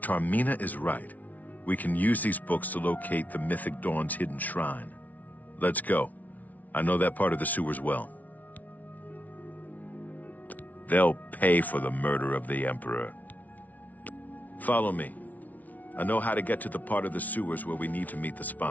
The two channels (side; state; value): right; late; 0.075 ms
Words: is right, we can use these books to locate the Mythic Dawn's hidden shrine. Let's go. I know that part of the sewers well. They'll pay for the murder of the Emperor. Follow me. I know how to get to the part of the sewers where we need to meet the